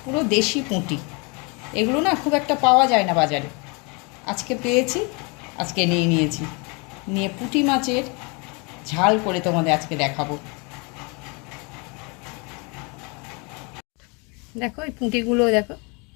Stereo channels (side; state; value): right; quieter; 31.0 dB